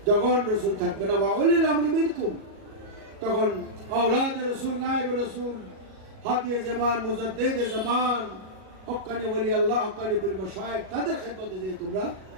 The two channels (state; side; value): late; left; 37 ms